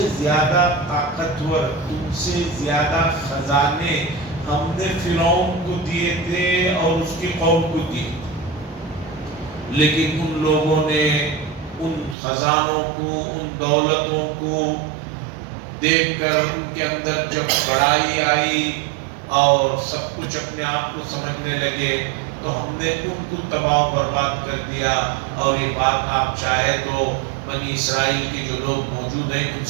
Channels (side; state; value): left; drops out; at 12.2 s